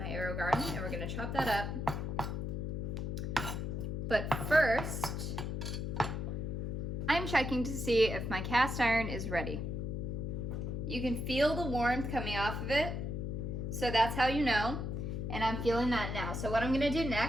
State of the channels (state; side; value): noise; left; hum, 3 dB below the sound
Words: AeroGarden, and we're gonna chop that up. But first, I'm checking to see if my cast iron is ready. You can feel the warmth coming off of it, so that's how you know, and I'm feeling that now. So what I'm gonna do